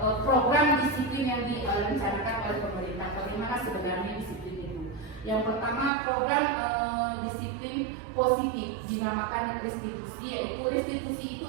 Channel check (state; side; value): drops out; left; at 5.9 s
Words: program disiplin yang direncanakan oleh pemerintah. Bagaimana sebenarnya disiplin itu? Yang pertama, program disiplin positif dinamakan restitusi, yaitu restitusi